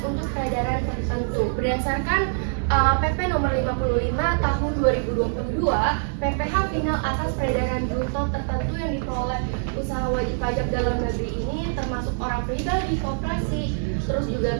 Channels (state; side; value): silent; left; digital silence